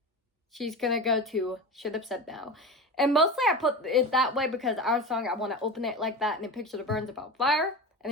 she's going to go to Should Have Said No. And mostly I put it that way because Our Song, I want to open it like that. And then Picture the Burns about fire. And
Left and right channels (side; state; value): both; normal; correlation 0.26